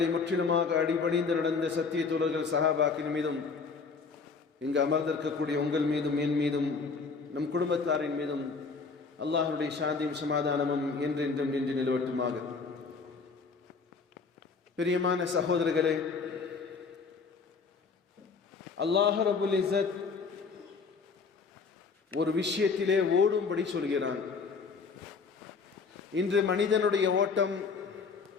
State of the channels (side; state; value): right; quieter; 4.9 dB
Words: முற்றிலுமாக அடிபணிந்து நடந்த சத்திய தோழர்கள் சஹாபாக்களின் மீதும், இங்கு அமர்ந்திருக்கக்கூடிய உங்கள் மீதும், என் மீதும், நம் குடும்பத்தாரின் மீதும் அல்லாஹ்வுடைய சாந்தியும் சமாதானமும் என்றென்றும் நின்று நிலவட்டுமாக. பிரியமான சகோதரர்களே, அல்லாஹ் ரப்புல் இஸ்ஸத் ஒரு விஷயத்திலே ஓடும்படி சொல்கிறான். இன்று மனிதனுடைய ஓட்டம்